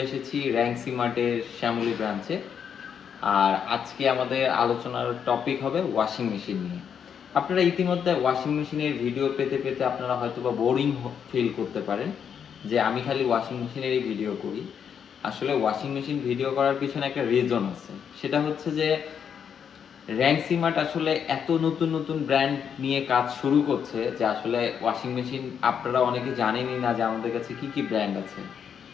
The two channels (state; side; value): quieter; right; 7.7 dB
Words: এসেছি র্যাঙ্কসি মার্টের শ্যামলী ব্রাঞ্চে। আর আজকে আমাদের আলোচনার টপিক হবে ওয়াশিং মেশিন নিয়ে। আপনারা ইতিমধ্যে ওয়াশিং মেশিনের ভিডিও পেতে পেতে আপনারা হয়তোবা বোরিং ফিল করতে পারেন যে আমি খালি ওয়াশিং মেশিনেরই ভিডিও করি। আসলে ওয়াশিং মেশিন ভিডিও করার পিছনে একটা রিজন আছে। সেটা হচ্ছে যে র্যাঙ্কসি মার্ট আসলে এত নতুন নতুন ব্র্যান্ড নিয়ে কাজ শুরু করছে যে আসলে ওয়াশিং মেশিন আপনারা অনেকে জানেনই না যে আমাদের কাছে কি কি ব্র্যান্ড আছে।